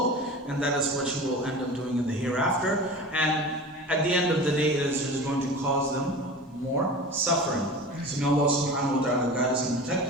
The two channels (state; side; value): normal; both; correlation 0.34